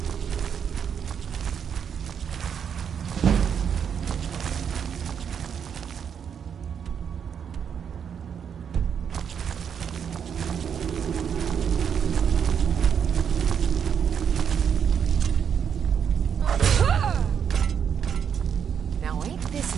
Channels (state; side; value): quieter; left; 7.7 dB